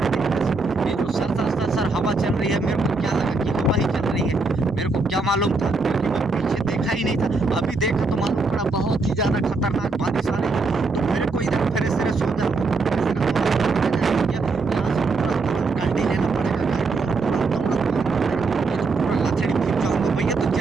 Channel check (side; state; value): left; quieter; 3.8 dB